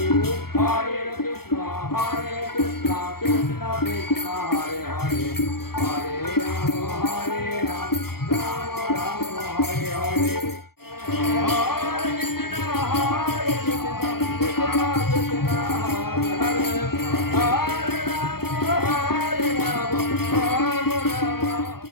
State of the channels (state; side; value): late; right; 0.94 ms